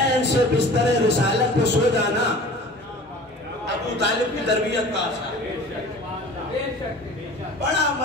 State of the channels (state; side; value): normal; both; correlation 0.43